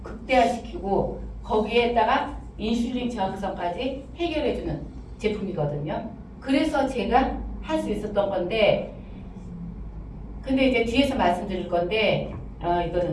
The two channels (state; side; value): identical; both; correlation 1.00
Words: 극대화시키고 거기에다가 인슐린 저항성까지 해결해주는 제품이거든요. 그래서 제가 할 수 있었던 건데, 근데 이제 뒤에서 말씀드릴 건데,